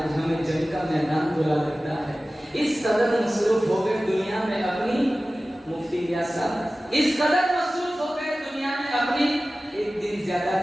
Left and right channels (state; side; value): normal; both; correlation 0.96